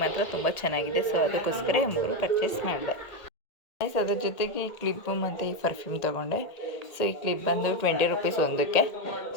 ಮಾತ್ರ ತುಂಬ ಚೆನ್ನಾಗಿದೆ. ಸೊ ಅದಕ್ಕೋಸ್ಕರ 3 ಪರ್ಚೇಸ್ ಮಾಡಿದೆ. ಅದ್ರ ಜೊತೆಗೆ ಈ ಕ್ಲಿಪ್ಪು ಮತ್ತು ಈ ಪರ್ಫ್ಯೂಮ್ ತೊಗೊಂಡೆ. ಸೊ ಈ ಕ್ಲಿಪ್ ಬಂದು 20 ರುಪೀಸ್ ಒಂದಕ್ಕೆ,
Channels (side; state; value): right; late; 1.9 ms